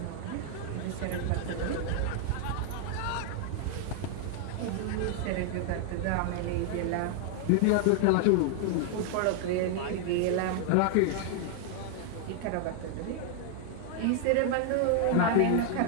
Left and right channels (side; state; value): both; different; correlation 0.00